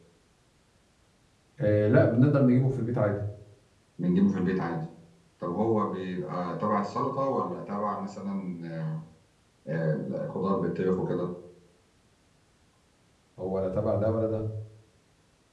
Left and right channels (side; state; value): both; identical; correlation 1.00